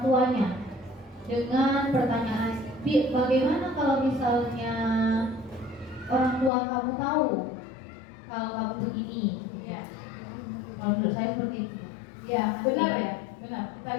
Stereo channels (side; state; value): right; drops out; at 6.5 s